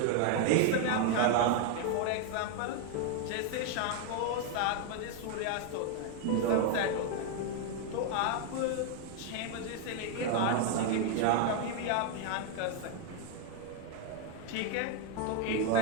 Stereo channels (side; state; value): both; different; correlation 0.01